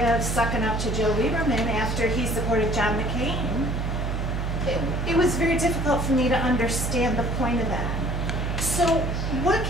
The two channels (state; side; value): noise; right; hum, 1 dB below the sound